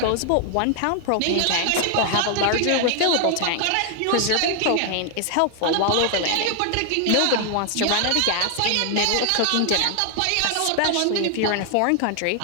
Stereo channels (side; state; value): both; different; correlation 0.00